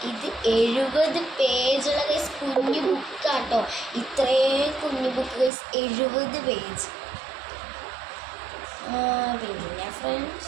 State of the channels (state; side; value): drops out; left; at 5.5 s